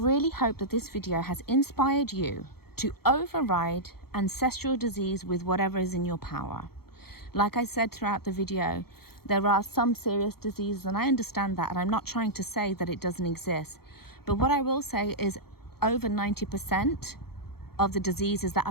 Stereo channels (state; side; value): late; right; 0.95 ms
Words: hope that this video has inspired you to override ancestral disease with whatever is in your power. Like I said throughout the video, there are some serious diseases, and I understand that, and I'm not trying to say that it doesn't exist. But what I will say is over 90% of the diseases that